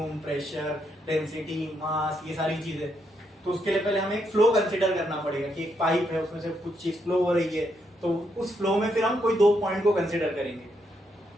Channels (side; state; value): both; normal; correlation 0.78